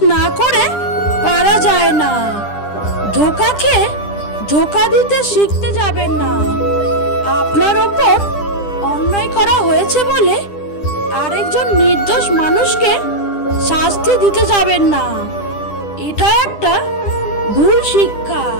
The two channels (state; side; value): late; right; 10 ms